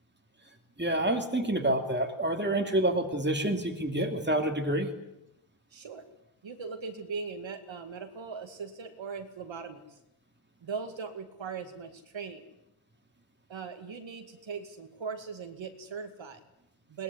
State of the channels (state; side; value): normal; both; correlation 0.03